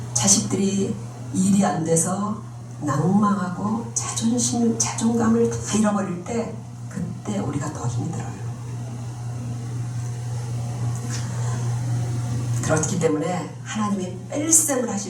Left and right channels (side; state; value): both; identical; correlation 1.00